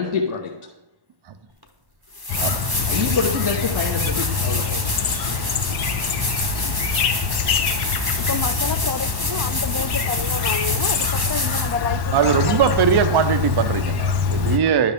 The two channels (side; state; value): left; late; 1.1 ms